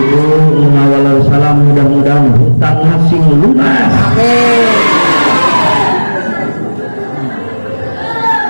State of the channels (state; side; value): inverted; both; correlation -1.00